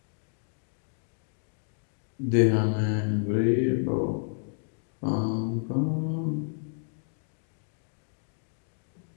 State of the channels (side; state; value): right; silent; digital silence